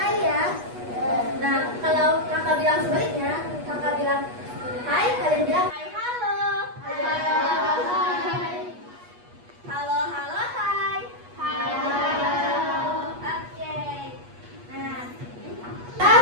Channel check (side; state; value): left; late; 8.3 ms